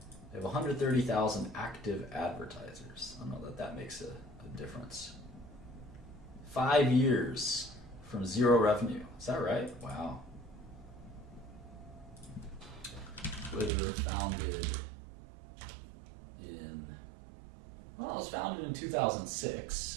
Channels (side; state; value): left; drops out; at 13.7 s